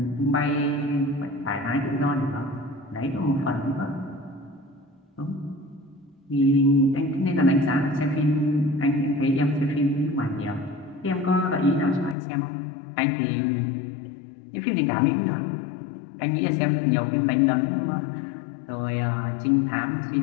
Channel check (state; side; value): drops out; right; at 12.2 s